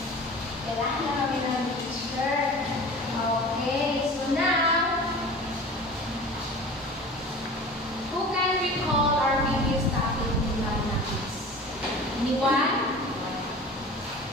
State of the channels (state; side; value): normal; both; correlation 0.38